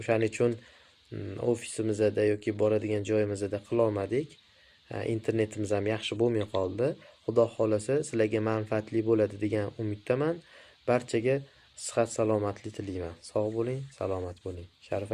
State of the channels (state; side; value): identical; both; correlation 1.00